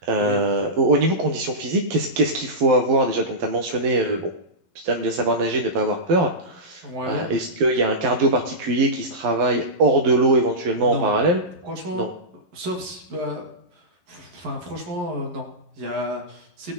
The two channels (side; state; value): left; late; 11 ms